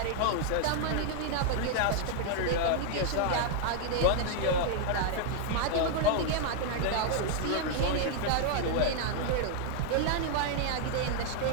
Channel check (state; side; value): different; both; correlation -0.01